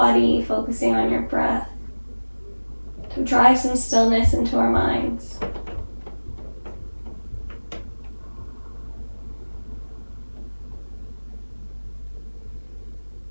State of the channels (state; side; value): inverted; both; correlation -1.00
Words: focusing on your breath, to drive some stillness into our minds.